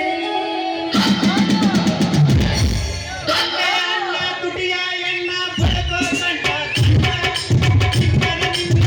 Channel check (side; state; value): both; identical; correlation 1.00